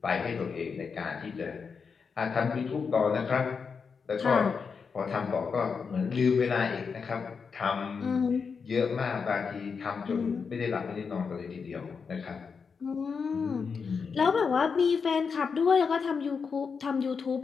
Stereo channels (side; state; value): right; quieter; 5.6 dB